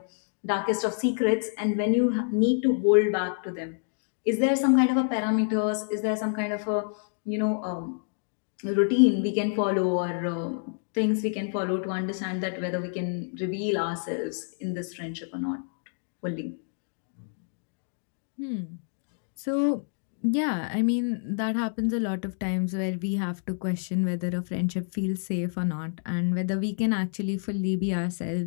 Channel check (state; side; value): silent; right; digital silence